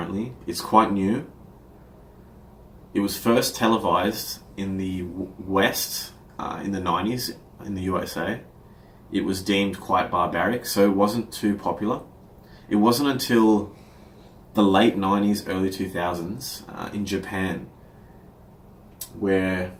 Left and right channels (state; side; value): identical; both; correlation 1.00